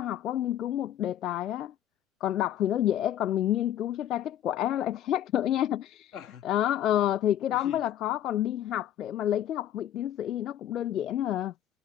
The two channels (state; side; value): quieter; right; 11.5 dB